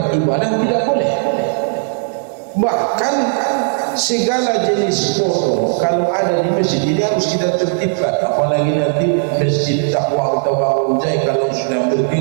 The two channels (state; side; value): silent; left; digital silence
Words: ibadah tidak boleh. Bahkan segala jenis foto kalau ada di masjid ini harus kita tertibkan. Apalagi nanti Masjid Taqwa atau Bangun Jai kalau sudah